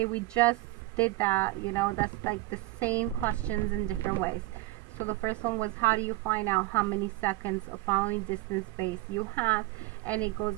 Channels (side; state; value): left; quieter; 19.0 dB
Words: we just did that, that's like the same questions in different ways. So the first one was, how do you find out how many seconds of following distance space you have? And it goes